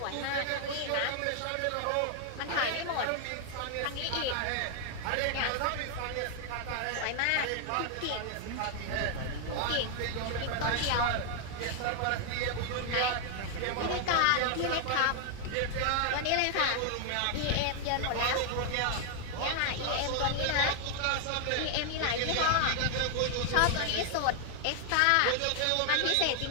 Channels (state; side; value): different; both; correlation 0.00